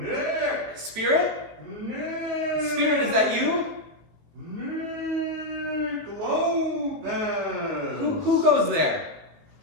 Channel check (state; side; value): late; left; 18 ms